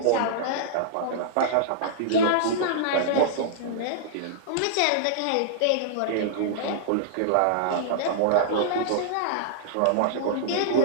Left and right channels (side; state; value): both; different; correlation -0.02